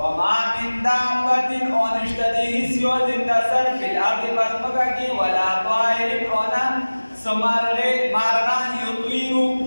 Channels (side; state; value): both; inverted; correlation -1.00